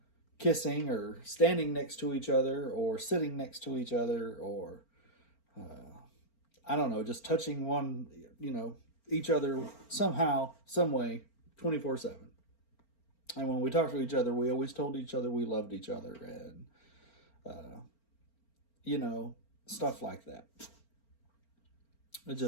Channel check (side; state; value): right; late; 4.4 ms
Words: kissing or standing next to each other or sitting next to each other or, just touching each other somehow, some way, 24/7. And when we talked to each other, we always told each other we loved each other and, stuff like that. It's